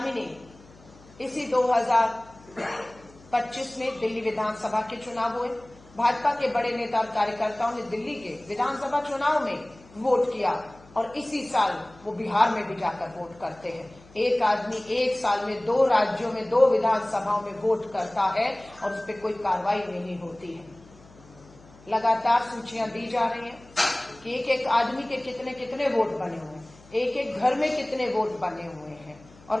ने इसी 2025 में दिल्ली विधानसभा के चुनाव हुए, भाजपा के बड़े नेता और कार्यकर्ताओं ने दिल्ली के विधानसभा चुनाव में वोट किया और इसी साल वो बिहार में भी जाकर वोट करते हैं। एक आदमी एक साल में 2 राज्यों में 2 विधानसभाओं में वोट करता है और उस पर कोई कार्रवाई नहीं होती है। लगातार सूचियां दी जा रही हैं कि एक एक आदमी के कितने कितने वोट बने हुए हैं, एक एक घर में कितने वोट बने हुए हैं, और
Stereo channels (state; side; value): noise; left; hum, 24 dB below the sound